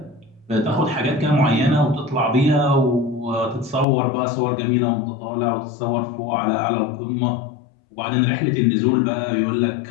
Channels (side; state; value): right; drops out; at 3.9 s